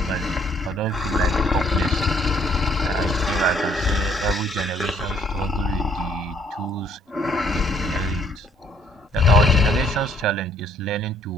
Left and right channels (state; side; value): normal; both; correlation 0.64